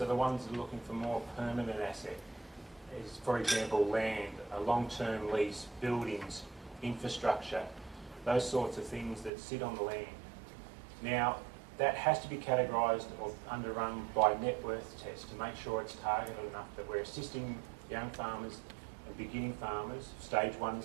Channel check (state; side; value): drops out; left; at 9.3 s